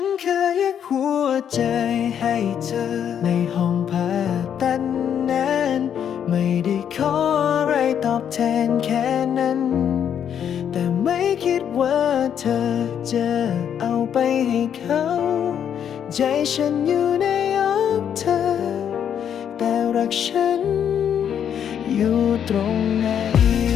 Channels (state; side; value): quieter; right; 8.8 dB